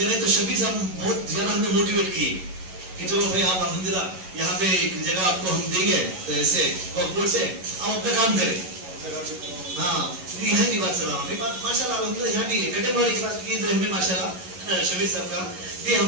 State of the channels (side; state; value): left; late; 11 ms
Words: تو شبیر صاحب بہت زیادہ ہمیں موٹیویٹ کیے کہ چلو بھائی آپ الحمدللہ یہاں پہ ایک جگہ آپ کو ہم دیں گے تو ایسے وقت سے آپ اپنا کام کریں. ہاں یہاں کی بات کر رہا ہوں. ماشاء اللہ الحمدللہ یہاں بھی کٹے والی کلاس کی میں ماشاء اللہ شبیر صاحب کا بھی ہم